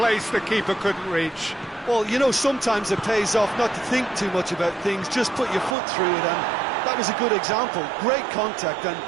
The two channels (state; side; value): drops out; left; at 5.8 s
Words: the keeper couldn't reach. Well, you know, sometimes it pays off not to think too much about things, just put your foot through it, and that was a good example. Great contact, and